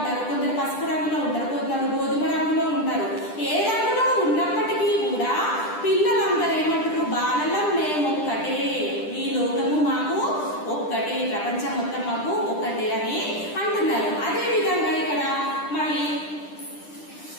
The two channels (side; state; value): right; late; 10 ms